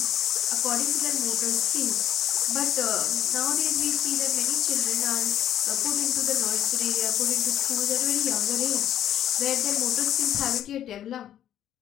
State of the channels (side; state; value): right; quieter; 11.0 dB